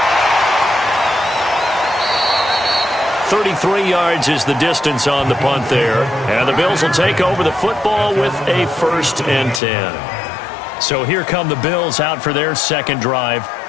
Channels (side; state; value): right; drops out; at 9.6 s